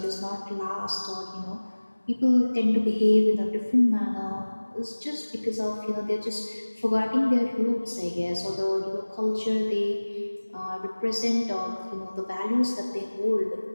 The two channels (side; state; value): both; inverted; correlation -1.00